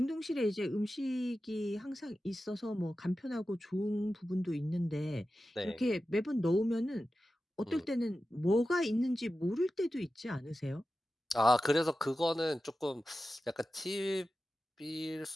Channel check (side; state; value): both; normal; correlation 0.93